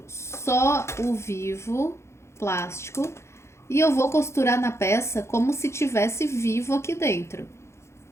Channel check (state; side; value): late; right; 0.13 ms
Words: só o vivo plástico. E eu vou costurar na peça como se tivesse vivo aqui dentro.